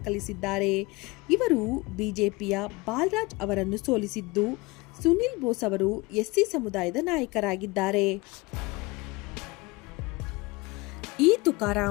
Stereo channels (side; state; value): right; quieter; 23.8 dB